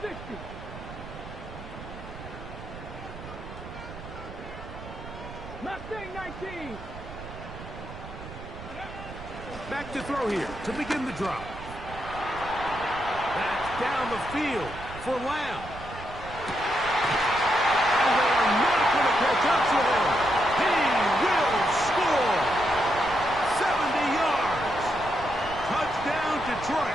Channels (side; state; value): right; noise; rumble, 13 dB below the sound